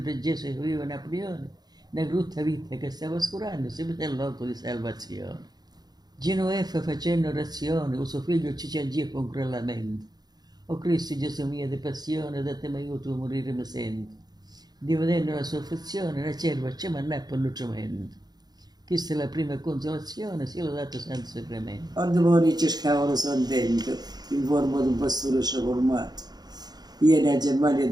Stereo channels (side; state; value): left; late; 0.19 ms